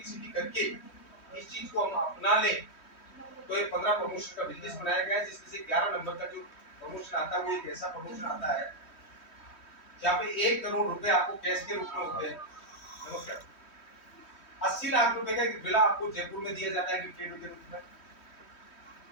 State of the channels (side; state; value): right; late; 3.1 ms